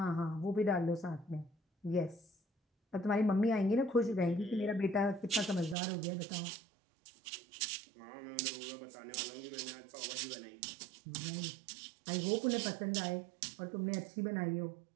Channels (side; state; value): left; drops out; at 5.8 s